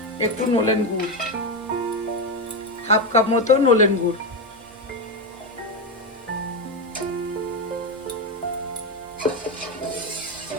একটু নলেন গুড়, হাফ কাপ মতো নলেন গুড়।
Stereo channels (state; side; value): normal; both; correlation 0.11